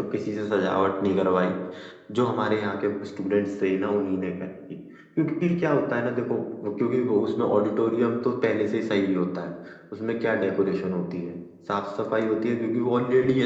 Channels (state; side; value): identical; both; correlation 1.00